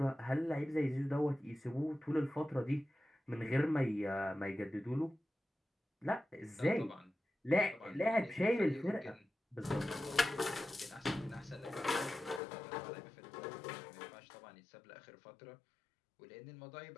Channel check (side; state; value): right; drops out; at 12.4 s